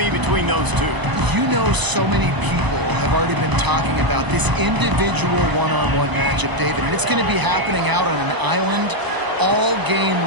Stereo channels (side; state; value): left; late; 1.0 ms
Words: between those two. You know, so many people have already been talking about this individual one-on-one matchup, David, and it's going to be happening out on an island all game